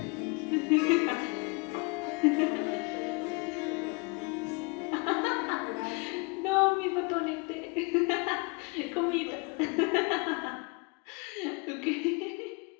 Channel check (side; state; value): right; quieter; 30.2 dB